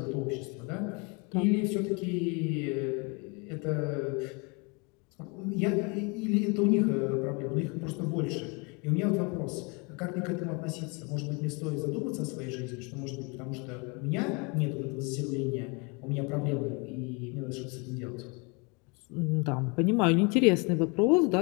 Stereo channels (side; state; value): right; quieter; 31.0 dB